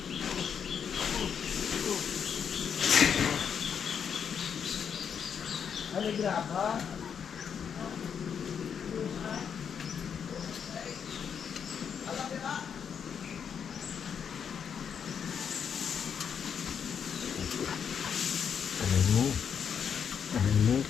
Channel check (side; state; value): right; quieter; 7.4 dB